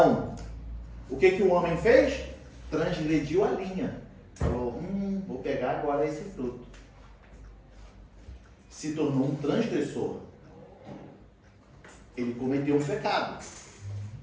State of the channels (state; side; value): identical; both; correlation 1.00